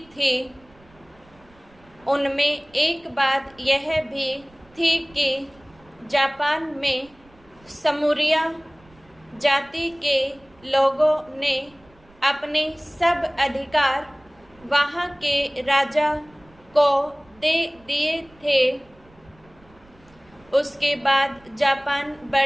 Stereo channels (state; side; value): noise; right; rumble, 29 dB below the sound